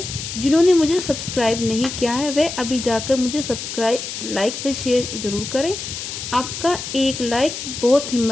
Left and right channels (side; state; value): left; noise; hiss, 7 dB below the sound